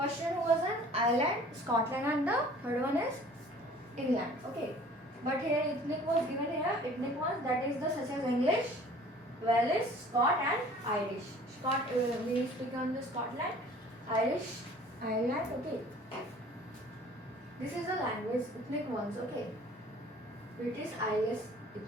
one was in Ireland, Scotland, and the third one is England. Okay. But here ethnic was given here. Ethnic ones, that is the such as English, Welsh, Scot, and Irish. Scot we speak on the Scotland, Irish, Ireland. Okay. This is the language ethnic ones. Okay. British, Irish,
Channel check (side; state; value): both; normal; correlation 0.50